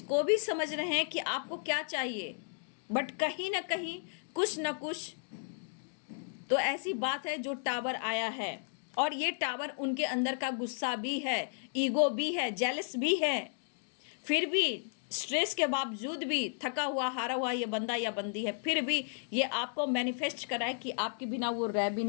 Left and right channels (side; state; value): right; silent; digital silence